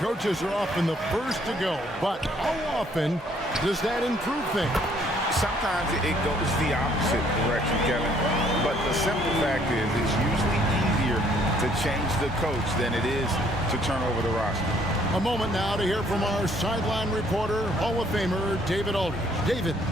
coaches are often the first to go. But how often does that improve things? Sometimes it goes the opposite direction, Kevin. But the simple fact is it's usually easier to to change the coach than it is to turn over the roster. A moment now to hear from our sideline reporter, Hall of Famer David Aldridge. David.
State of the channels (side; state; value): both; normal; correlation 0.64